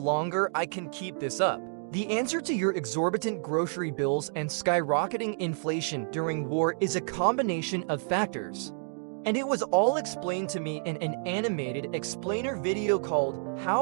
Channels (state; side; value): silent; left; digital silence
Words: I can keep this up. The answer to your exorbitant grocery bills and skyrocketing inflation during war is a combination of factors. And it was all explained to me in an animated explainer video called